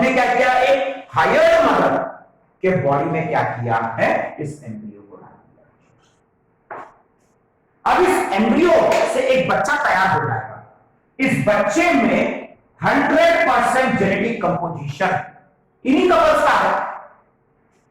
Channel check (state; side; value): identical; both; correlation 1.00